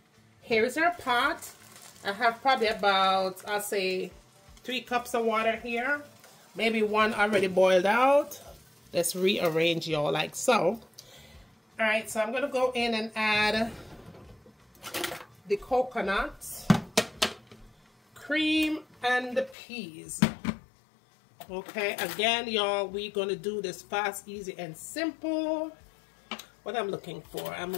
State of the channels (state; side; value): drops out; right; at 19.6 s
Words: here's our pot. I have probably about, I'll say, 3 cups of water here. Maybe 1 already boiled out. Let's rearrange, y'all, like so. Alright, so I'm going to go in and add the coconut, cream, and the peas. Okay, again, y'all, we're going to do this fast, easy, and simple. What I'm looking for, I'm